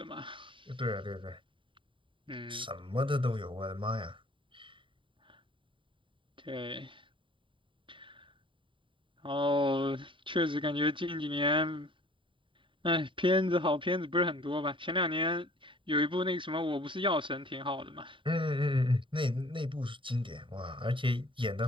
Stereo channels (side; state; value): left; late; 0.25 ms